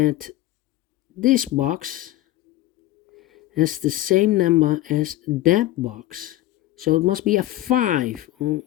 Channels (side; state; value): right; quieter; 15.3 dB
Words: this box has the same number as that box. So it must be a 5. All